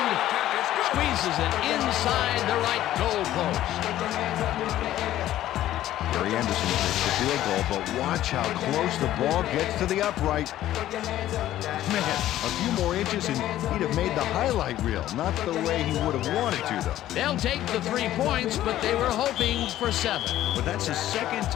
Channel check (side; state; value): right; quieter; 13.5 dB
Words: squeezes it inside the right goal post. Gary Anderson takes the field goal, but watch how close the ball gets to the upright. Man, a few more inches and he'd have made the highlight reel. Not the way he would have wanted to, though. They'll take the 3 points, but they were hoping for 7. But that's the second